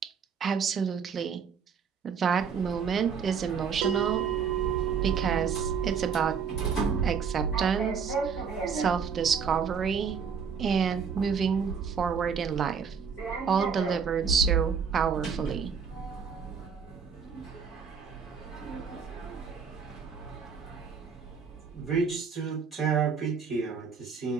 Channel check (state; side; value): quieter; left; 6.4 dB